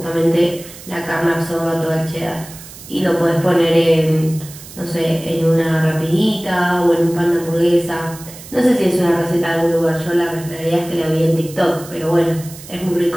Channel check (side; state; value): right; noise; hiss, 17 dB below the sound